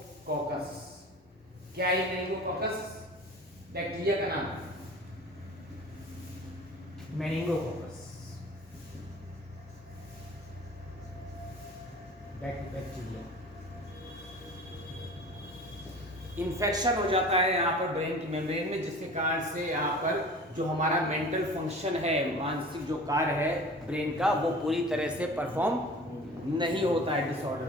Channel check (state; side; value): normal; both; correlation 0.41